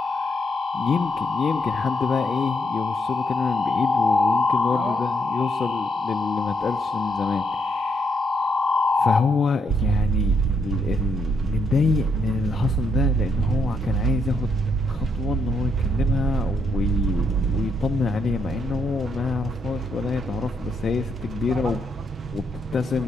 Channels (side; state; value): both; normal; correlation 0.76